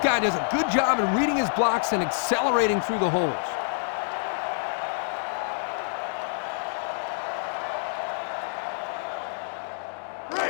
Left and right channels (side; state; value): right; silent; 60 dB below the other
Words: guy does a good job in reading his blocks and accelerating through the holes.